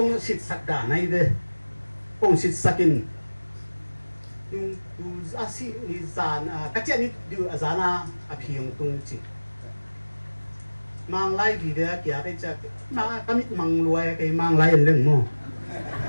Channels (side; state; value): both; inverted; correlation -1.00